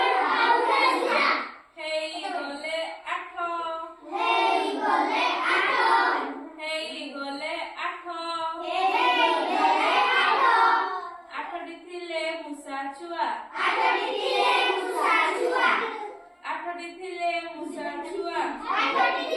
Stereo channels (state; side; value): identical; both; correlation 1.00